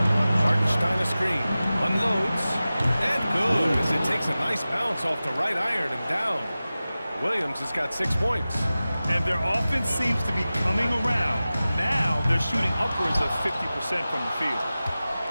Hartenstein a screen. Unloads. And good as it takes a nice bounce off the right iron and down. Williams has got 6 points. And their offense seems to be coming around. Now they're shooting upwards of 50% from the field.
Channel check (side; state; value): both; inverted; correlation -0.96